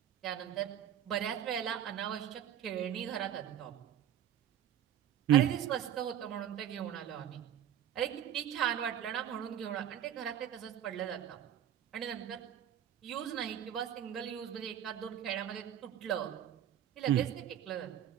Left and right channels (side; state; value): left; quieter; 10.3 dB